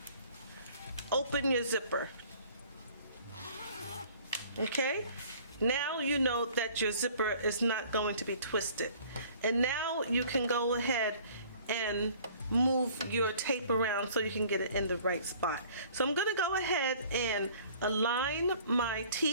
open your zipper. Okay? Now you know that your zipper is not going to be twisted. And now you can go ahead and move your tape around so you can get it in the right spot. So I'm going to go ahead and align my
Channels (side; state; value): both; inverted; correlation -0.52